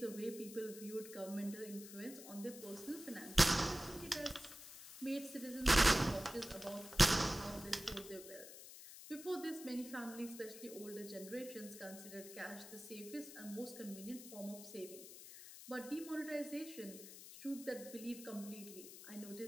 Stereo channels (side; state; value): left; noise; hiss, 13 dB below the sound